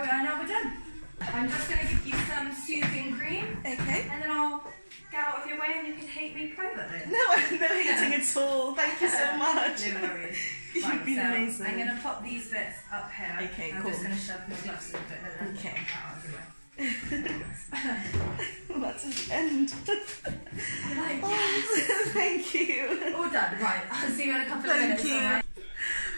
are, now we're done. I'm just going to give you some soothing cream. Okay. And then I'll get out of your way and you can hate me privately. No, I'm no hating at all. Thank you so much. No worries. You've been amazing. I'm going to pop these bits up here. Okay, I'm cool. just going to shove my gloves in a bit and then okay. get out of your way. Well, that's the end. Like, yes. Thank you. All done. Right, I'll see you in a couple of minutes. Thank you. Right?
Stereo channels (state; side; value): inverted; both; correlation -1.00